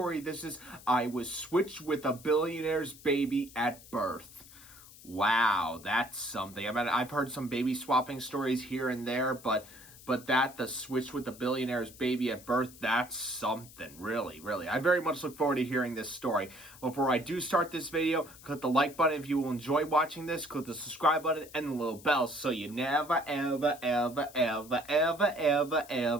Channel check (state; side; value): noise; left; hiss, 20 dB below the sound